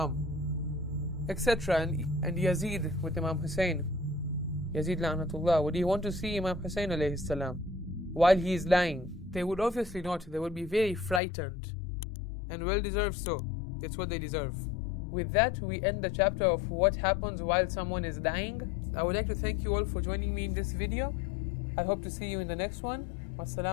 Etc. And Yazid with Imam Hussein, Yazid la'natullah, would he want to see Imam Hussein alayhi salam while he is lying? They would obviously not. They would be very frightened, and well deserved so. It's what they deserve. With that, we end the chapter of what happens while someone is dying. I would like to thank you all for joining me in this video. I hope to see you in the next one.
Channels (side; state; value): right; drops out; at 11.2 s